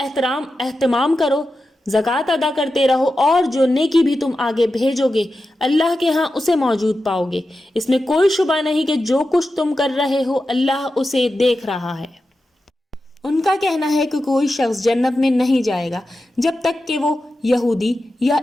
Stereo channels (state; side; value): normal; both; correlation 0.91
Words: کرو، زکوٰۃ ادا کرتے رہو، اور جو نیکی بھی تم آگے بھیجو گے اللہ کے ہاں اسے موجود پاؤ گے۔ اس میں کوئی شبہ نہیں کہ جو کچھ تم کر رہے ہو اللہ اسے دیکھ رہا ہے۔ ان کا کہنا ہے کہ کوئی شخص جنت میں نہیں جائے گا جب تک کہ وہ یہودی یا